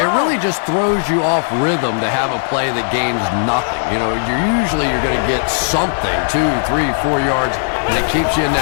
really just throws you off rhythm to have a play that gains nothing. You know, you're going to get something, 2, 3, 4 yards, and it keeps you in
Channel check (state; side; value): silent; right; digital silence